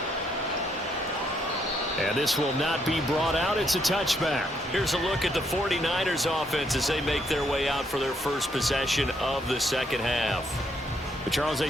And this will not be brought out. It's a touchback. Here's a look at the 49ers offense as they make their way out for their first possession of the second half. But Charles, they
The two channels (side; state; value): both; normal; correlation 0.73